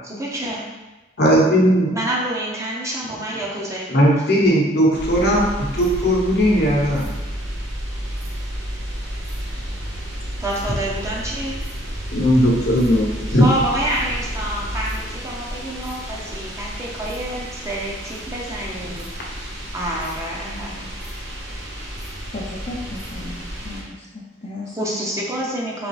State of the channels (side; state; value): both; normal; correlation 0.58